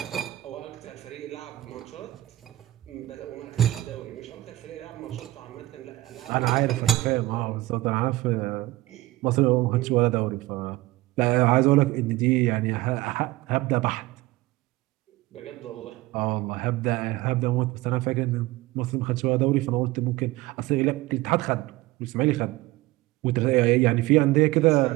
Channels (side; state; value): left; quieter; 18.1 dB